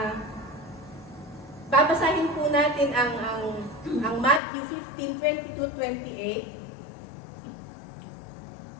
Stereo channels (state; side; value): drops out; right; at 4.4 s